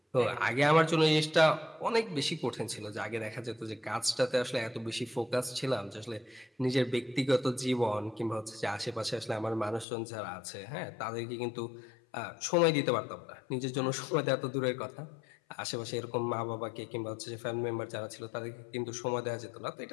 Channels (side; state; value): right; drops out; at 9.9 s